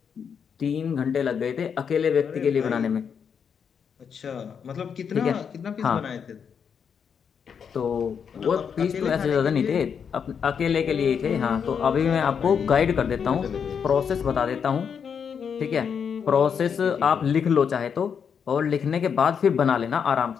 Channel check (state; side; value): quieter; right; 7.0 dB